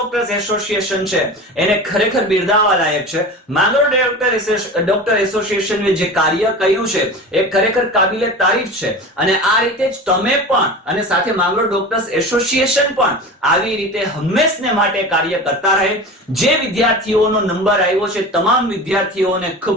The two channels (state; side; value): normal; both; correlation 0.32